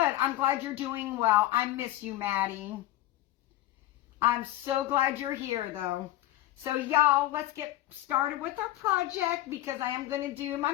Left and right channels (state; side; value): quieter; right; 15.2 dB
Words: glad you're doing well. I miss you, Maddie. I'm so glad you're here, though. So, y'all, let's get started with our project because I am going to do my